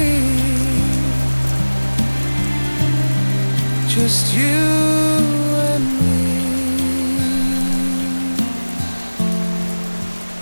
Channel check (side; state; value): both; inverted; correlation -1.00